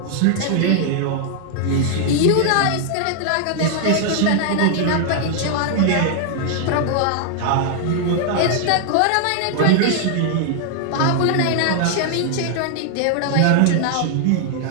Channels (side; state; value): both; different; correlation 0.00